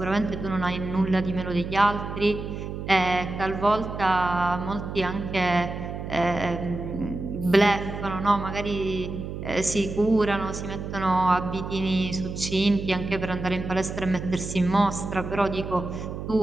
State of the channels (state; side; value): noise; right; hum, 7 dB below the sound